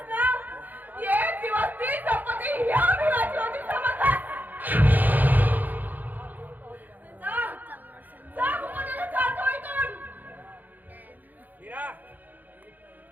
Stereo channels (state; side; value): late; left; 0.084 ms